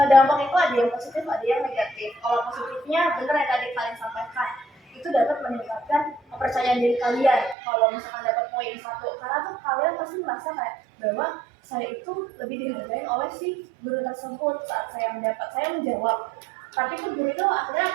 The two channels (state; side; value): drops out; left; at 7.6 s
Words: dampak itu ada yang positif ada yang negatif. Kalau positifnya bener yang tadi kalian sampaikan itu dapat meningkatkan kepercayaan diri kalian kalau misalkan dapat poin 1 karena tuh kalian pasti merasa kayak bahwa saya itu lebih dihargai oleh si guru tersebut saat saya menjawab. Tapi tuh guru itu akhirnya